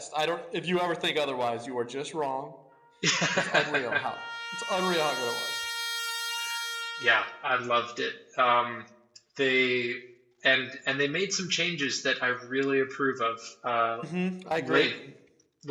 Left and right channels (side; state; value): both; identical; correlation 1.00